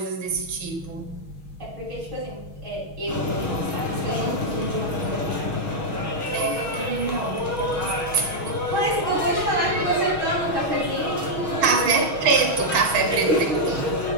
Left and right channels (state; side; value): late; left; 6.3 ms